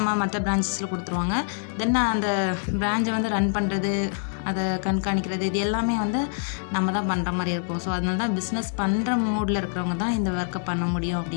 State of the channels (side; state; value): right; silent; digital silence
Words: மற்ற பிரான்ச்சஸில் கொடுத்துருவாங்க. தென் அந்த பிரான்ச்சை வந்து ரன் பண்ணுறது, அதை கண்காணிக்கிறது இது எல்லாமே வந்து நம்ம தான் பண்ணுற மாதிரி இருக்கும். ஸோ அதனால தான் பிஸ்னஸ் பண்ணுற மூடில் இருக்கிறவங்க தான் இந்த ஒர்க்கை பண்ண முடியும்